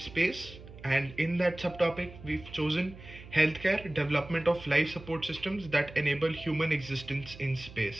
and in that subtopic we've chosen healthcare development of life support systems that enable human existence in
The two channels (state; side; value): noise; right; hum, 17 dB below the sound